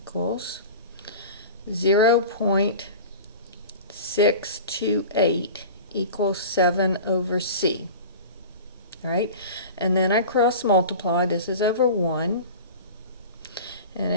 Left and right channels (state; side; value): inverted; both; correlation -0.35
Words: 0.628 equals 7 over c. All right, and then I cross multiply. This is over 1, and